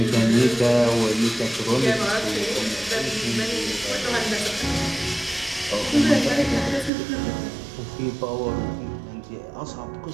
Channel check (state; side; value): drops out; left; at 6.9 s